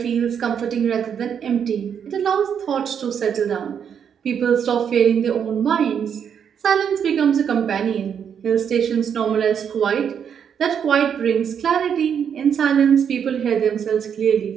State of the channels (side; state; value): left; quieter; 7.9 dB